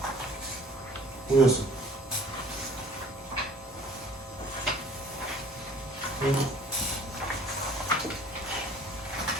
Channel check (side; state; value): both; normal; correlation 0.52